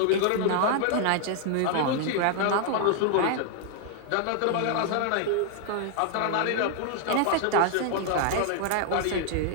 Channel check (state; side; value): different; both; correlation 0.00